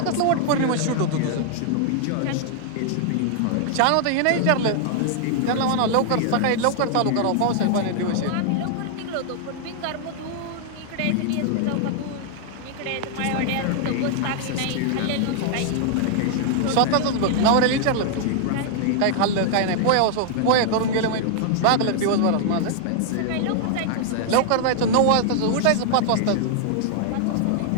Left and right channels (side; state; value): both; different; correlation 0.00